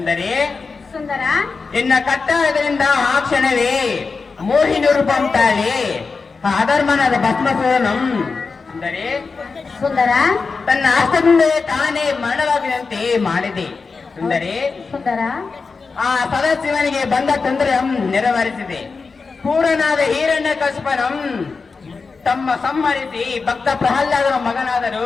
ಸುಂದರ ಇನ್ನ ಕಟ್ಟಾಯದಿಂದ ಆ ಕ್ಷಣವೇ ಮೋಹಿನಿ ರೂಪಂ ತಾಳಿ ಆ ಅಧರ್ಮನಾದ ಭಸ್ಮಾಸುರನಂ ಸುಂದರಿ ಸುಂದರ ತನ್ನ ಹಸ್ತದಿಂದ ತಾನೇ ಮರಣವಾಗುವಂತೆ ಮಾಡಿದೆ ಸುಂದರಿ. ಸುಂದರ ಆ ಸದಾಶಿವನಿಗೆ ಬಂದ ತೊಂದರೆ ನೆರವೇರಿಸಿದೆ. ಪೂರ್ಣನಾದ ಹಿರಣ್ಯ ಕಸ್ಪನಂ ತಮ್ಮ ಸಂಹರಿಸಿ ಭಕ್ತ ಪ್ರಹ್ಲಾದನ ಮಗನಾದರು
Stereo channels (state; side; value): quieter; right; 4.6 dB